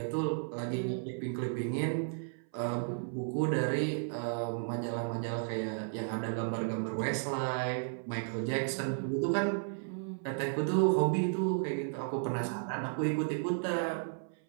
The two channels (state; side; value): silent; left; 55 dB below the other